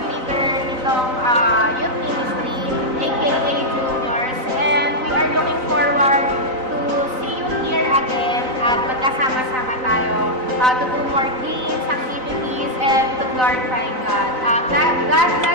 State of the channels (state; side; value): late; left; 3.9 ms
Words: leader nitong youth ministry, aka Juniors, and we are looking forward to see you here again at magkasama-sama tayo to do more games, activities, and to glorify God. God